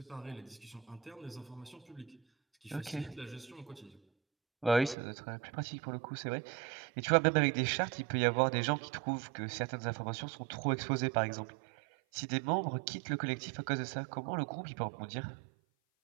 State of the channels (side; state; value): left; drops out; at 5.0 s